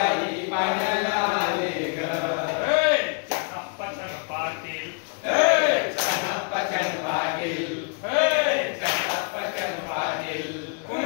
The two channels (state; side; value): quieter; right; 37.6 dB